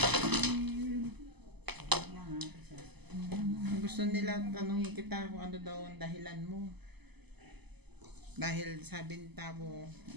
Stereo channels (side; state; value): left; late; 0.99 ms